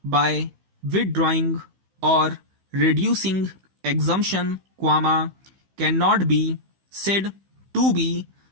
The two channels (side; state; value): left; late; 15 ms